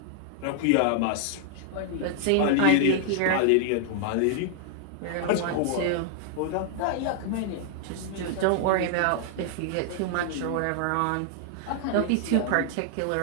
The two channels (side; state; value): both; different; correlation 0.00